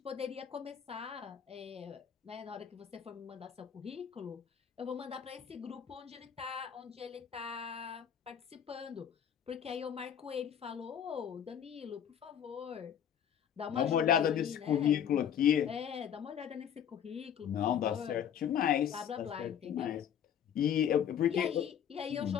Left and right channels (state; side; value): quieter; right; 9.0 dB